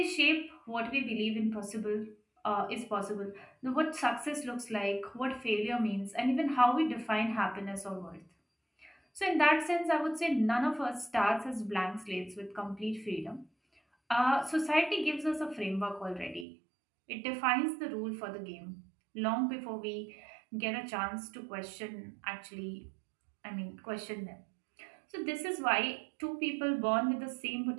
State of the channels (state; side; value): drops out; left; at 16.4 s